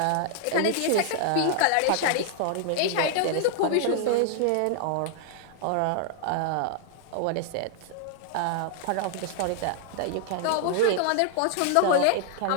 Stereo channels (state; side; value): different; both; correlation -0.01